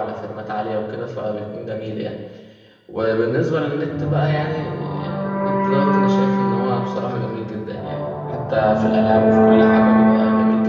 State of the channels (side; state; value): both; identical; correlation 1.00